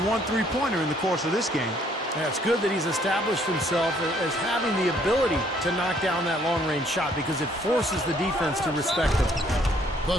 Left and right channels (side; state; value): both; normal; correlation 0.64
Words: 1 3-pointer in the course of this game. Yeah, it's good that he's established himself as having the ability to knock down that long-range shot because it forces the defense to respect him. The